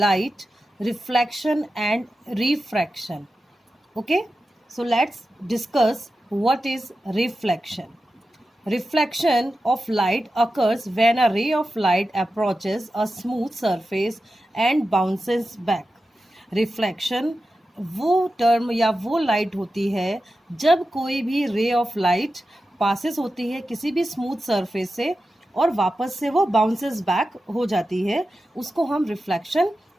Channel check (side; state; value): both; normal; correlation 0.92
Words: Reflection and Refraction. Okay, so let's discuss what is reflection. Reflection of light occurs when a ray of light approaches a smooth surface and bounces back. Reflection वो टर्म या वो लाइट होती है जब कोई भी रे ऑफ लाइट पासेस होती है किसी भी स्मूथ सरफेस से और वापस से वो बाउंसेस बैक हो जाती है, उसको हम रिफ्लेक्शन